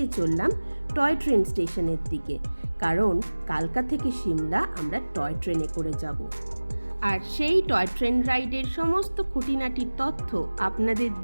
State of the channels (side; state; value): both; inverted; correlation -1.00